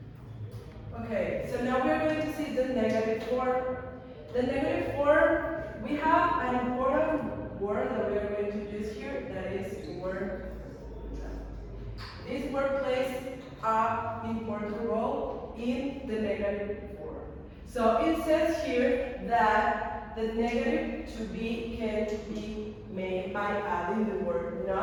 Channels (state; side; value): identical; both; correlation 1.00